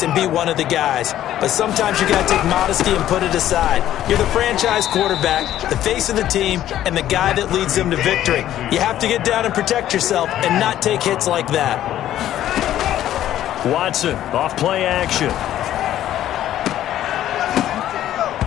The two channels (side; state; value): right; quieter; 12.4 dB